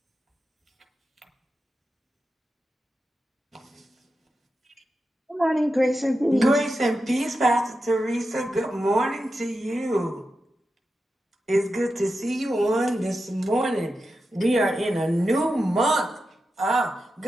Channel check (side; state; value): both; normal; correlation 0.90